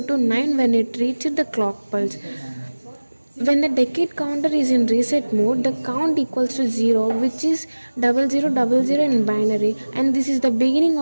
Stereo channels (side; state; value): both; inverted; correlation -1.00